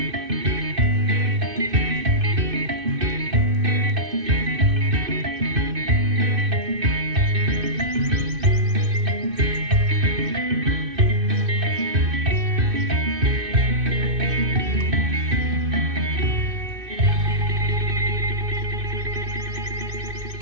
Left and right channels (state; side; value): late; left; 2.6 ms